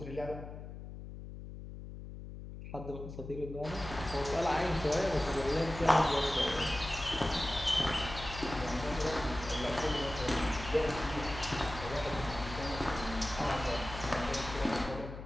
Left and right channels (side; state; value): left; noise; hum, 11 dB below the sound